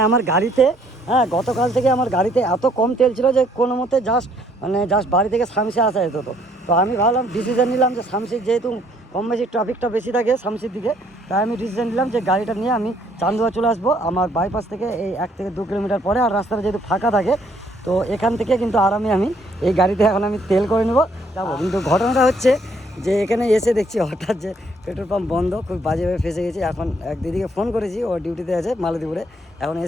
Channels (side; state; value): both; normal; correlation 0.66